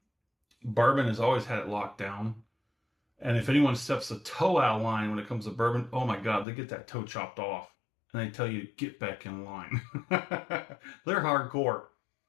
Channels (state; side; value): drops out; right; at 6.5 s